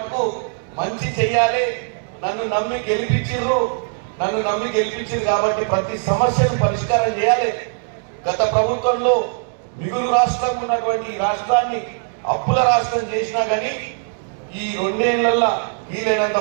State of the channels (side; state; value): left; silent; 65 dB below the other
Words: మంచి చెయ్యాలి. నన్ను నమ్మి గెలిపించారు కాబట్టి ప్రతి సమస్యను పరిష్కారం చేయాలి. గత ప్రభుత్వంలో మిగులు రాష్ట్రం ఉన్నటువంటి ఈ రాష్ట్రాన్ని అప్పుల రాష్ట్రం చేసినా కానీ ఈ 2 ఏళ్లలో వీలైనంత